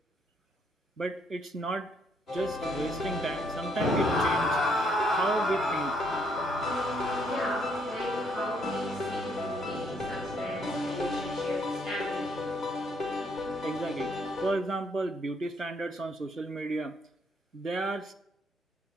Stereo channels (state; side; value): normal; both; correlation 0.69